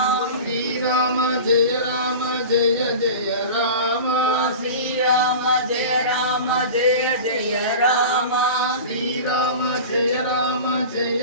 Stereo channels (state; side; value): inverted; both; correlation -0.34